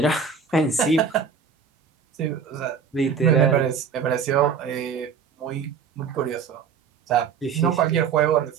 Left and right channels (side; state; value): left; quieter; 6.3 dB